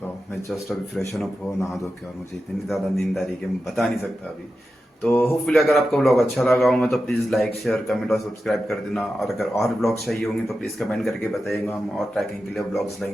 हूँ. मैं जस्ट अभी फ्रेशन अप हो, नहा धो के, और मुझे इतनी ज़्यादा नींद आ रही है कि मैं बता नहीं सकता अभी. तो होपफुली अगर आपको व्लॉग अच्छा लगा होगा तो प्लीज़ लाइक, शेयर, कमेंट और सब्सक्राइब कर देना. और अगर और ब्लॉग्स चाहिए होंगे तो प्लीज़ कमेंट करके बताइएगा. हम और ट्रैकिंग के लिए ब्लॉग्स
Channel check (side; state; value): both; normal; correlation 0.91